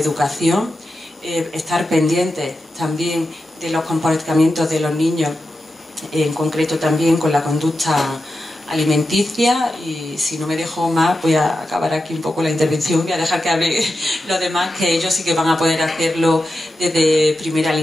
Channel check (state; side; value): normal; both; correlation 0.90